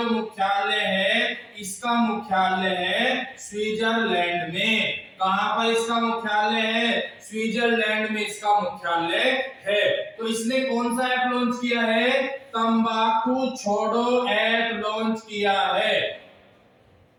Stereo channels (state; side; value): identical; both; correlation 1.00